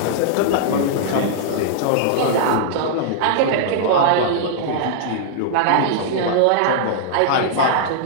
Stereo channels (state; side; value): different; both; correlation -0.02